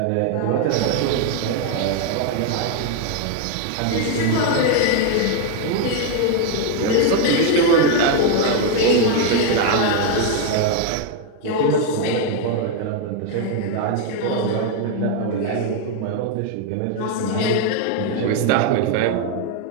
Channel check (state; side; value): different; both; correlation 0.00